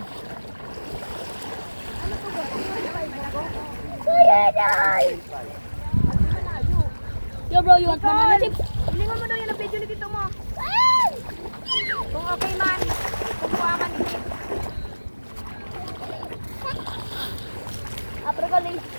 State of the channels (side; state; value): both; inverted; correlation -1.00